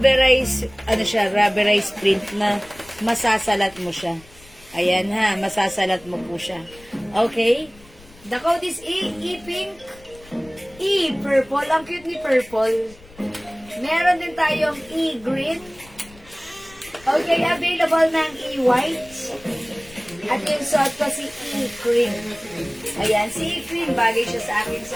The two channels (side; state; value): left; noise; rumble, 23 dB below the sound